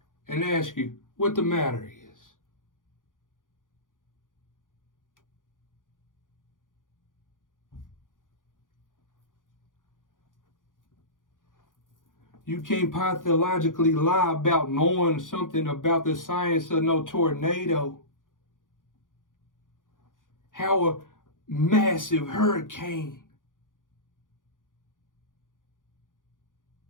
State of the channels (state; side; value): late; right; 0.89 ms